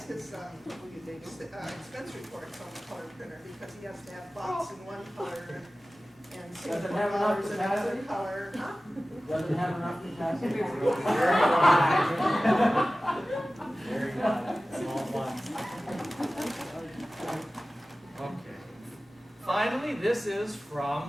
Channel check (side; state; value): both; normal; correlation 0.96